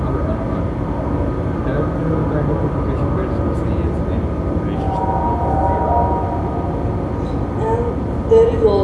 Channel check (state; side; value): identical; both; correlation 1.00